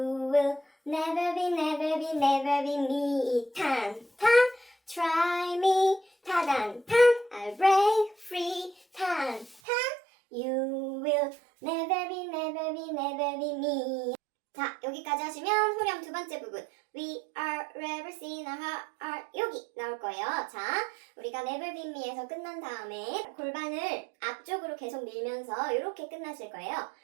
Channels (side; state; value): left; drops out; at 9.6 s